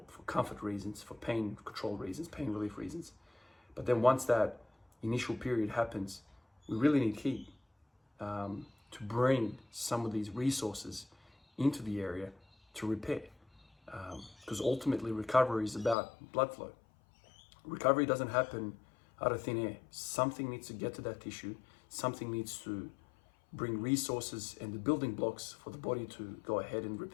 comfort reasons, for pain control reasons, pain relief reasons. But then once that initial period happens, we really need heat to bring some of these resources into the area to repair. Because ultimately recovery is about blood flow. Recovery doesn't happen out of thin air. Something needs to get to that tissue. Something needs to bring resources and the building blocks for the body to go ahead and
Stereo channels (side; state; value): right; drops out; at 16.0 s